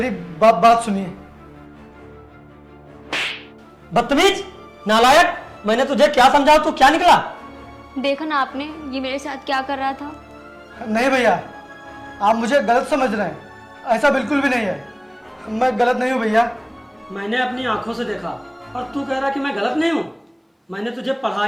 बात सुनिए। बदतमीज, नालायक, मैंने तुझे क्या समझाया, तू क्या निकला? देखा ना आपने ये मेरे साथ क्या कर रहा था। नहीं भैया, आप मुझे गलत समझ रहे हैं। ऐसा बिल्कुल भी नहीं है। मैं गलत नहीं हूँ भैया। मैंने अपनी आंखों से देखा और तू कह रहा कि मैं गलत नहीं हूँ। मैंने तुझे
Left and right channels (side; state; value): both; identical; correlation 1.00